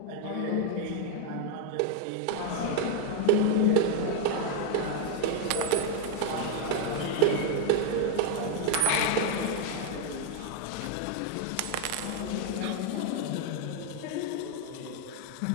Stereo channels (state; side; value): different; both; correlation 0.01